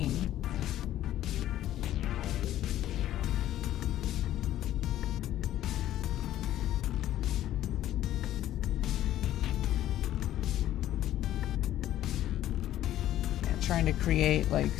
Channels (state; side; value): quieter; right; 12.9 dB